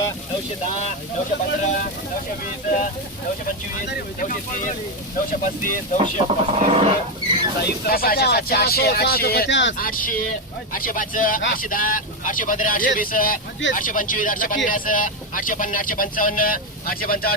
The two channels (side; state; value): both; normal; correlation 0.08